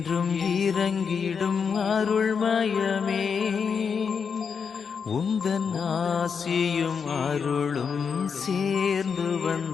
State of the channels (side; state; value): right; quieter; 6.2 dB